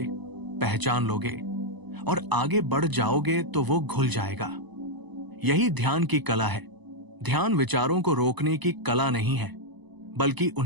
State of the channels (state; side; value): late; left; 1.0 ms